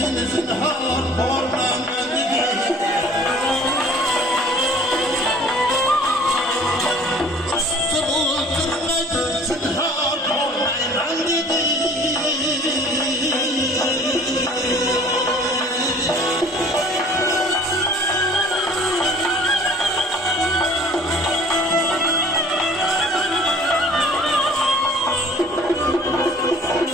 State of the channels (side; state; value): both; normal; correlation 0.50